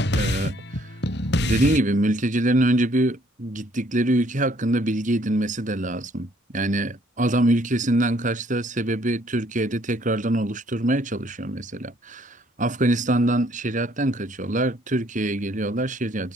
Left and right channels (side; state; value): both; normal; correlation 0.64